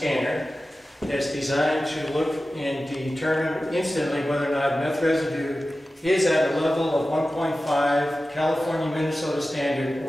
that's designed to look and determine instantly whether or not meth residue is at a level of 1.5 California Minnesota standard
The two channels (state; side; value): normal; both; correlation 0.94